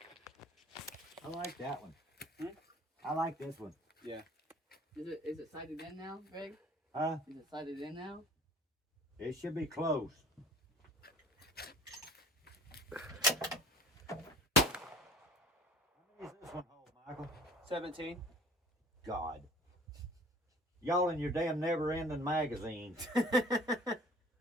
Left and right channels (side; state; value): both; normal; correlation 0.48